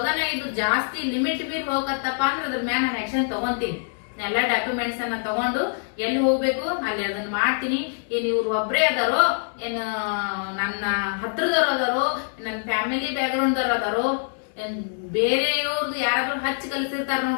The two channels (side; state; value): right; silent; digital silence